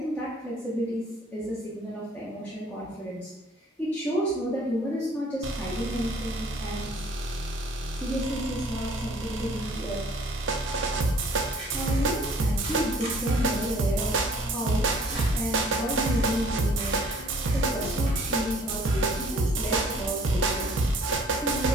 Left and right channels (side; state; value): both; normal; correlation 0.55